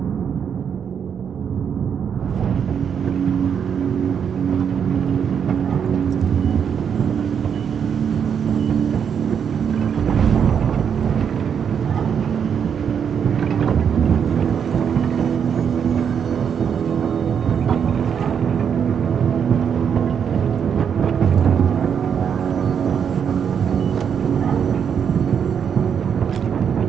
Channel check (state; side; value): quieter; left; 7.6 dB